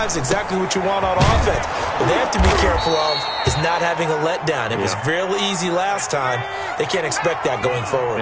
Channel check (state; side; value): identical; both; correlation 1.00